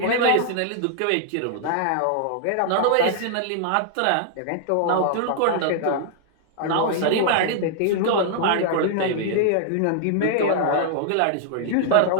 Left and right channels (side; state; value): both; different; correlation -0.01